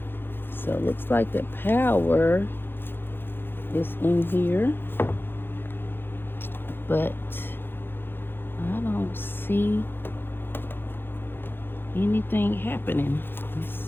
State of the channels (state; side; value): late; right; 0.10 ms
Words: So it looks like the power is in here, but I don't see anything happening. Let's